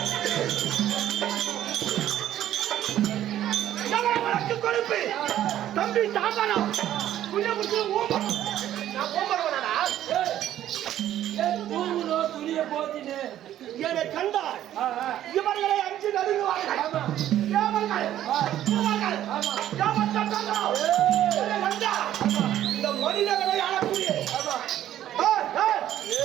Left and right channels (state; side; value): quieter; left; 12.1 dB